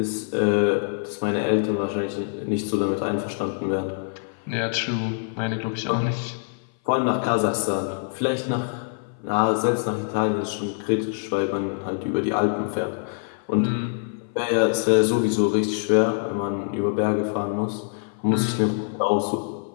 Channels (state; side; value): silent; right; 57 dB below the other